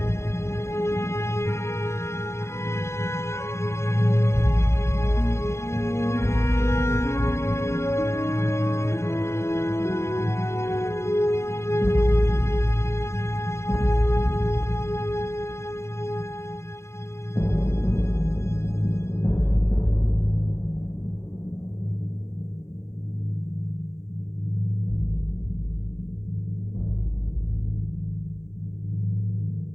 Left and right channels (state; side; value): late; right; 0.13 ms